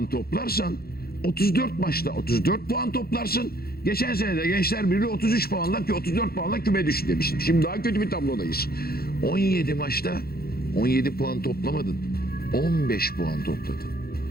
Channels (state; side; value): late; right; 0.44 ms